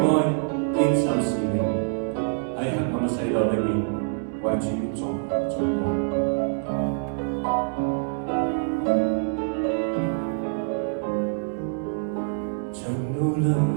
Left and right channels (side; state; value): left; silent; 61 dB below the other